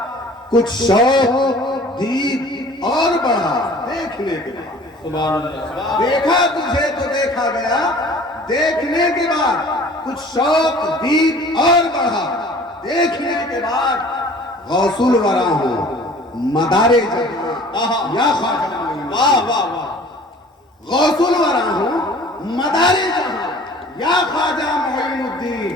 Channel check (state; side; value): normal; both; correlation 0.48